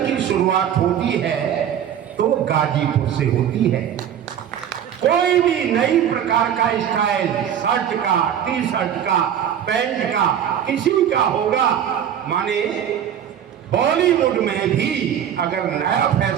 की शुरुआत होती है तो गाजीपुर से होती है। कोई भी नई प्रकार का स्टाइल, शर्ट का, टी शर्ट का, पैंट का, किसी का होगा, माने बॉलीवुड में भी अगर नया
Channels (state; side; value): quieter; left; 9.5 dB